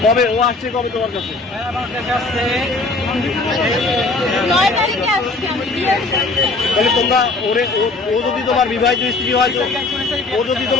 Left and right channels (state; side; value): quieter; right; 3.4 dB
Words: কবে ও আসছে, কবে তোমার কাছে? তাহলে তোমরা ও যদি তোমার বিবাহিত স্ত্রী হয়, ও যদি